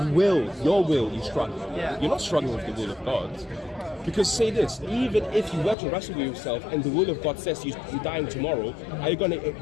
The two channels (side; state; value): right; drops out; at 5.8 s